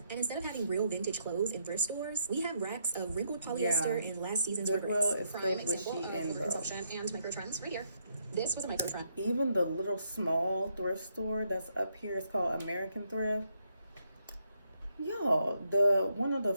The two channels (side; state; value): both; inverted; correlation -0.76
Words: And instead of having real vintage clothes in thrift stores, we have racks of wrinkled polyester and last season's Goodwill regrets. is Prime filled with example sheet of and bro. overconsumption and micro trends right here. This was a micro trend. Even the little small thrift store that's up here is called American Thrift. Y'all, one of the